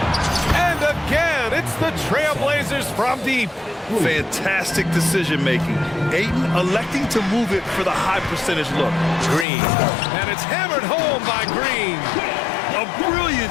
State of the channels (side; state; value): right; drops out; at 9.5 s